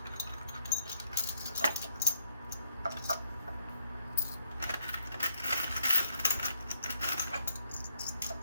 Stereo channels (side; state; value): both; inverted; correlation -0.73